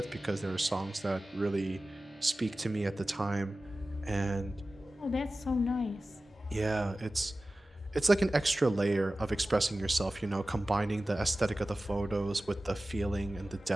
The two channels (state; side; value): normal; both; correlation 0.96